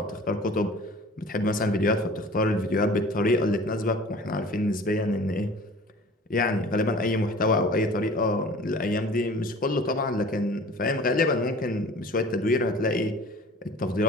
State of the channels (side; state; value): both; normal; correlation 0.45